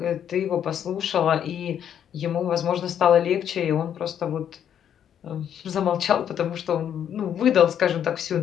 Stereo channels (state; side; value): quieter; right; 9.3 dB